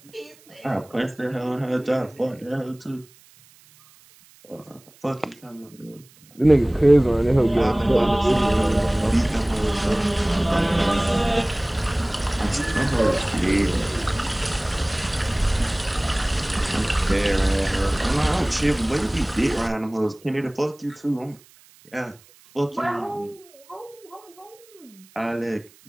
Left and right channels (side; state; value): right; noise; hiss, 27 dB below the sound